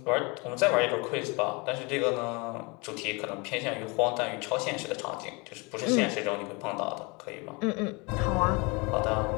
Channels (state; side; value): quieter; right; 28.5 dB